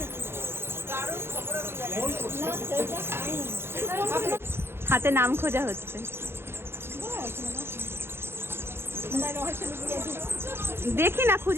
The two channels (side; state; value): left; late; 0.11 ms